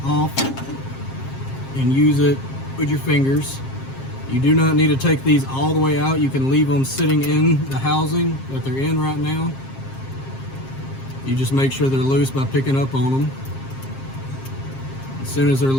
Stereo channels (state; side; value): late; right; 7.5 ms